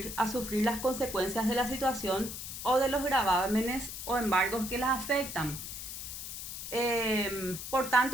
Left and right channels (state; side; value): noise; left; hiss, 8 dB below the sound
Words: las consecuencias de la situación o de los gravámenes o embargos que las afectan. Por